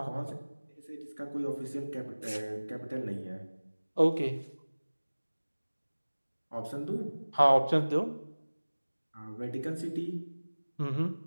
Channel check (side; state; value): both; inverted; correlation -1.00